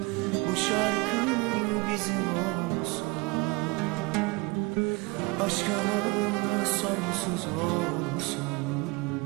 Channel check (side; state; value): left; quieter; 26.3 dB